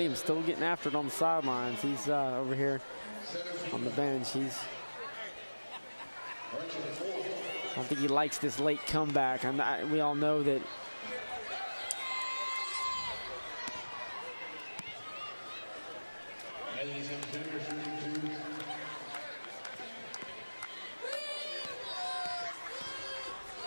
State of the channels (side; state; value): both; inverted; correlation -1.00